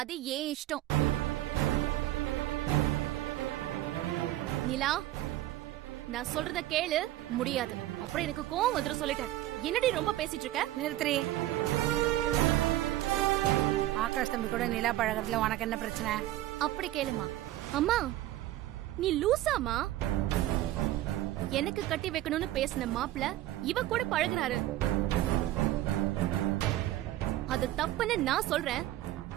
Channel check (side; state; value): left; quieter; 14.9 dB